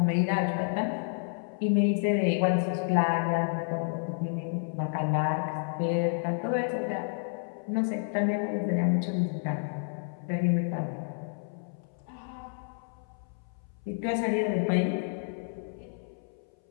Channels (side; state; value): right; silent; 58 dB below the other